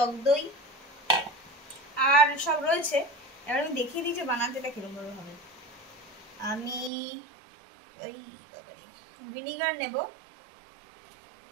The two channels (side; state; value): left; drops out; at 6.9 s